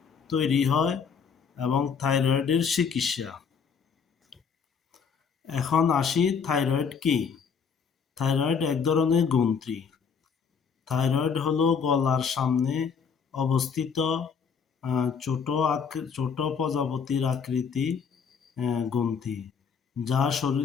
তৈরি হয় এবং থাইরয়েডের চিকিৎসা। এখন আসি, থাইরয়েড কি? থাইরয়েড এক ধরনের গ্রন্থি। থাইরয়েড হলো গলার সামনে অবস্থিত ছোট প্রজাপতির আকৃতি গ্রন্থি, যা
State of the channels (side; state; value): right; quieter; 6.3 dB